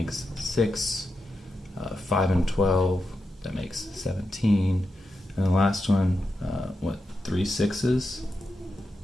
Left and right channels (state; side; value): normal; both; correlation 0.87